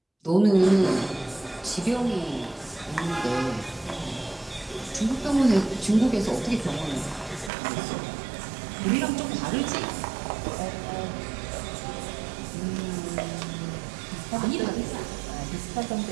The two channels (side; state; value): left; drops out; at 7.5 s